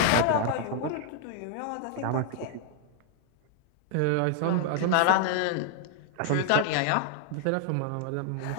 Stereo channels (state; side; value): different; both; correlation 0.00